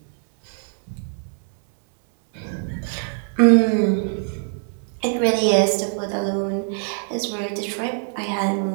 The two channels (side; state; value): left; silent; digital silence